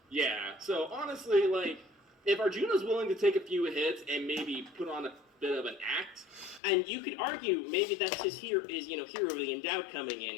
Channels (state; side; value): drops out; right; at 6.6 s